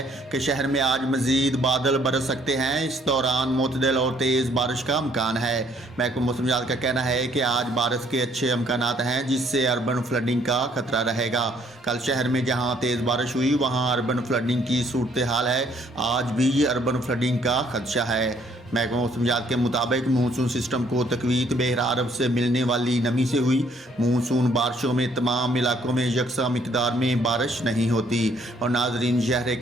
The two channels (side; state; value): both; normal; correlation 0.64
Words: कि शहर में आज मजीद बादल बरस सकते हैं। इस दौरान मुतदल और तेज़ बारिश का इम्कान है। महकमा मौसमियात का कहना है कि आज बारिश के अच्छे इम्कानात हैं, जिससे अर्बन फ्लडिंग का खतरा रहेगा। कल शहर में जहां तेज़ बारिश हुई वहां अर्बन फ्लडिंग की सूरत हाल है। आज भी अर्बन फ्लडिंग का खदशा है। महकमा मौसमियात के मुताबिक मानसून सिस्टम को तकवीत बहर अरब से मिलने वाली नमी से हुई। मानसून बारिशों में तमाम इलाकों में यकसा मिकदार में बारिश नहीं होती। और नाजरीन, शहर